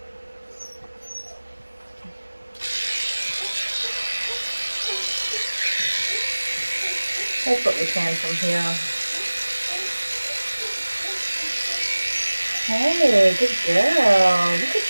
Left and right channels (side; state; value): both; inverted; correlation -1.00